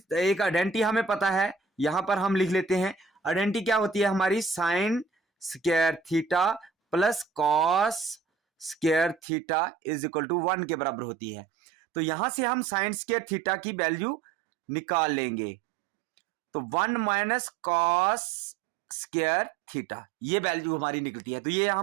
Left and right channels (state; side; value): drops out; left; at 9.2 s